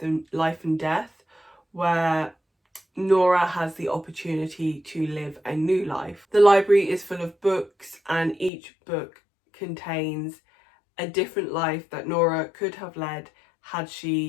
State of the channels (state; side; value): drops out; right; at 8.5 s